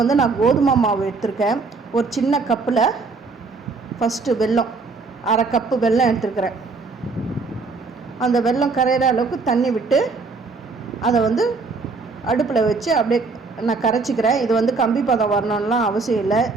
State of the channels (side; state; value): left; quieter; 4.2 dB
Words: வந்து நான் கோதுமை மாவு எடுத்திருக்கேன். ஒரு சின்ன கப்பில் ஃபஸ்ட்டு வெல்லம், அரை கப்பு வெல்லம் எடுத்துருக்கிறேன். அந்த வெல்லம் கரையிற அளவுக்கு தண்ணி விட்டு அதை வந்து அடுப்பில் வச்சு அப்படியே நான் கரைச்சிக்கிறேன். இது வந்து கம்பி பதம் வரணும்லாம் அவசியம் இல்லை.